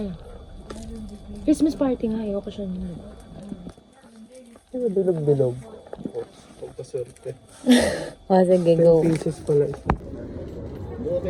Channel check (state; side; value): identical; both; correlation 1.00